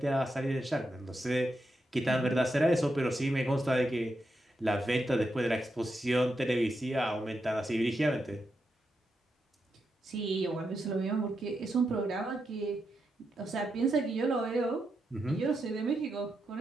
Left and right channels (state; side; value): normal; both; correlation 0.85